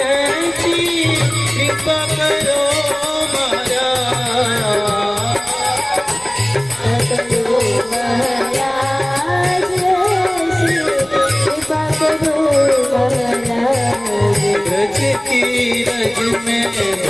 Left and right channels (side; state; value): left; noise; rumble, 27 dB below the sound